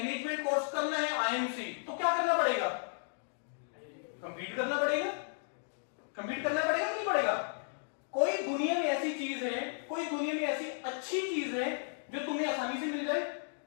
कोर्स करना है आईएम से, तो क्या करना पड़ेगा? कंप्लीट करना पड़ेगा। कंप्लीट करना पड़ेगा कि नहीं पड़ेगा? कोई दुनिया में ऐसी चीज है, कोई दुनिया में ऐसी अच्छी चीज है जो तुम्हें आसानी से मिल जाए?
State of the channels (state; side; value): silent; right; digital silence